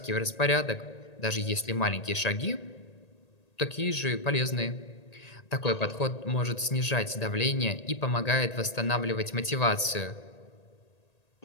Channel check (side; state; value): right; late; 1.8 ms